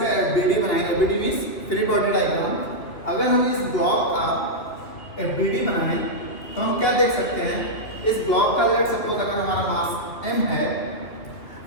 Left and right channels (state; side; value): late; right; 3.0 ms